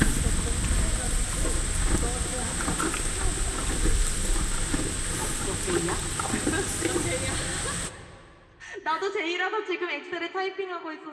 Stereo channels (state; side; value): identical; both; correlation 1.00